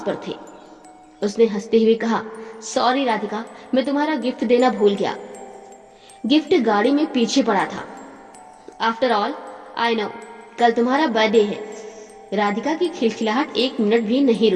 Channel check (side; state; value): both; identical; correlation 1.00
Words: पर थे। उसने हंसते हुए कहा, सॉरी राधिका, मैं तुम्हारा गिफ्ट देना भूल गया। गिफ्ट गाड़ी में पीछे पड़ा था। आफ्टर ऑल आई नो, कल तुम्हारा बर्थडे है। राधिका की खिलखिलाहट एक मिनट भी नहीं